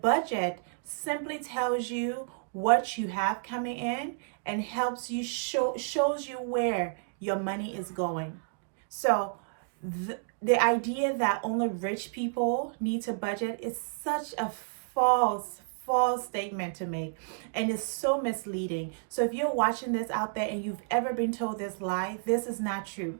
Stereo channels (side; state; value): left; silent; digital silence